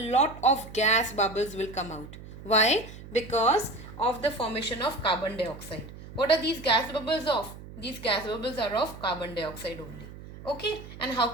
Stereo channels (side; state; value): right; noise; hum, 15 dB below the sound